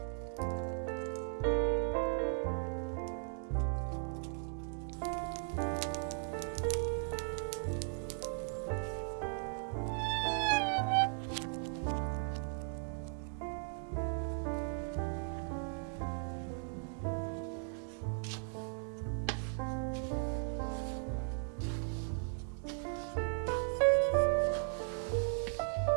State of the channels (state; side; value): silent; left; 53 dB below the other